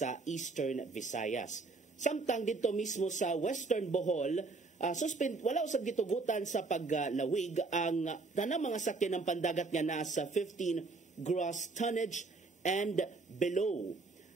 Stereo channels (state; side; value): quieter; left; 3.8 dB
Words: Eastern Visayas. Samtang dito mismo sa Western Bohol, wala usab gitugutan sa paglawig ang tanang mga sakyan ng pandagat nga nasa 15 gross tonnage and below.